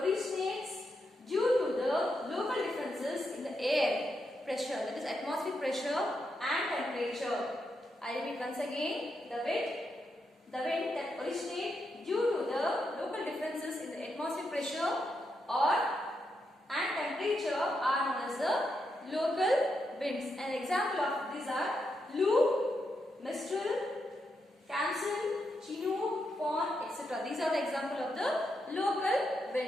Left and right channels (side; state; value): both; normal; correlation 0.83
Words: due to the local differences in the air pressure, that is atmospheric pressure and temperature. I repeat once again: the wind that originates due to the local differences in the atmospheric pressure and temperature are known as the local winds. An example of these are Lu, Mistral, Kamsen, Chinook, Fawn, etc. These are the example of the local